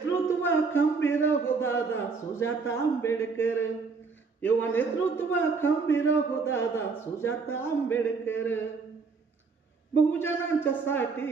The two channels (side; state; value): left; quieter; 4.8 dB